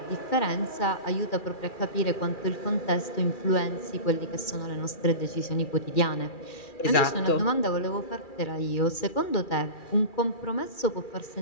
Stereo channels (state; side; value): late; right; 2.4 ms